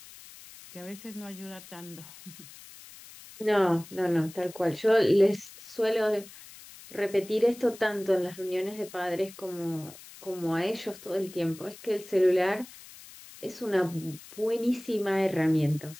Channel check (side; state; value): left; noise; hiss, 18 dB below the sound